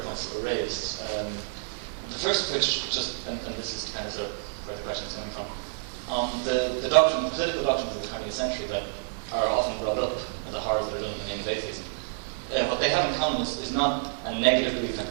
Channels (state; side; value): silent; left; digital silence